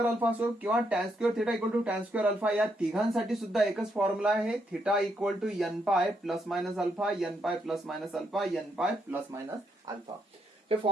alpha असो किंवा tan square theta equal to tan square alpha, या तिघांसाठी सुद्धा एकच formula आहे. Theta equal to n pi plus minus alpha, n pi plus minus alpha, n pi plus minus alpha. हे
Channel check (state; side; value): normal; both; correlation 0.77